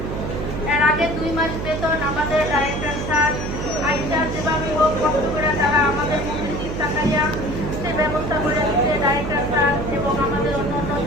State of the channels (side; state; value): right; noise; hum, 5 dB below the sound